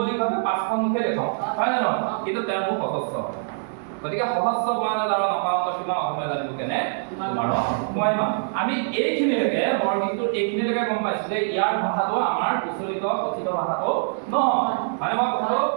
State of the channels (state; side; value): silent; left; digital silence